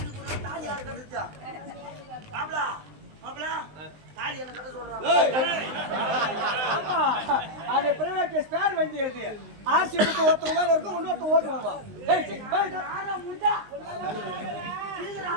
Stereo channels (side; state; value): left; late; 19 ms